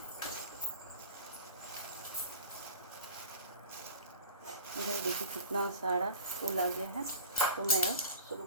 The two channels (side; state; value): both; inverted; correlation -0.37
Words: इधर देखिए कितना सारा फूल आ गया है, तो मैं अब शुरू